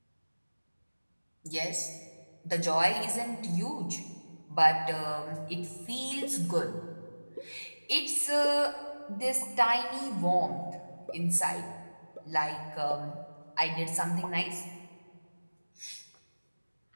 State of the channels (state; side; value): inverted; both; correlation -1.00